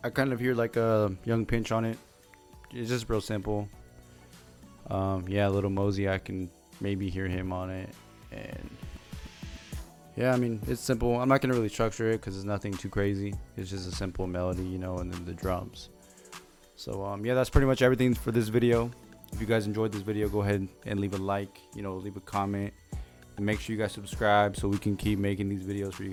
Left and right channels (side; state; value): both; identical; correlation 1.00